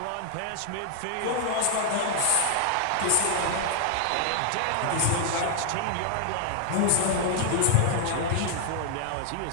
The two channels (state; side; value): different; both; correlation 0.00